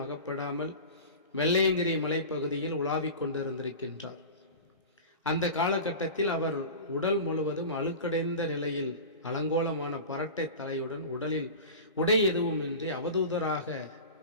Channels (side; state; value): both; inverted; correlation -0.32